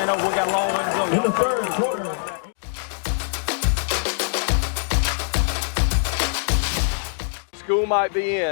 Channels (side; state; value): right; silent; digital silence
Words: over. We got a long way to go. Y'all stay with us. We'll be right back. School might be